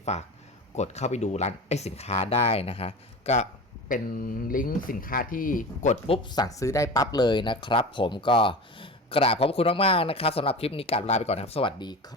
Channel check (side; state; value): both; normal; correlation 0.31